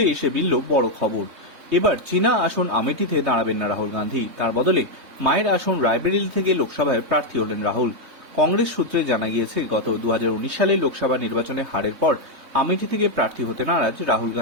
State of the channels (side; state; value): left; late; 3.6 ms